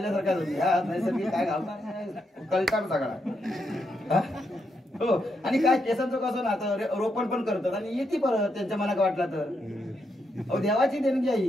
नैसर्गिक काय घालणार कळकार सगळा हो. आणि काय केसांचं कसं ना आता रोपण पण करतात आणि येते परत त्यांच्या मनात वाटला तर, अहो देवाची देणगी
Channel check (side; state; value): both; normal; correlation 0.81